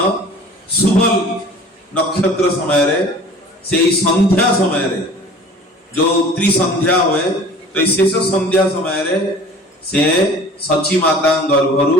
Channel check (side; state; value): both; normal; correlation 0.45